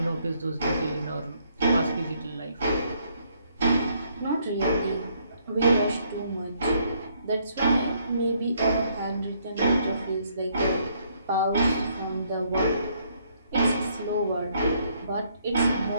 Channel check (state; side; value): inverted; both; correlation -0.69